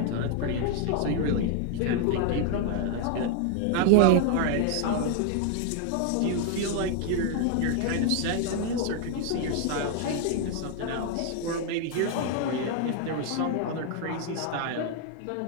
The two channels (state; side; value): different; both; correlation 0.00